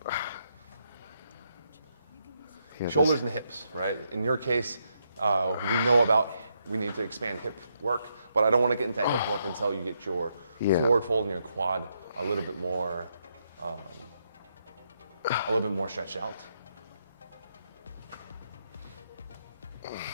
Shoulders and hips, right? In your case, we need to expand hip work, but I don't want to get into hip work until you get your forward fold and your quad a little bit more stretched out.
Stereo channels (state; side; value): inverted; both; correlation -0.79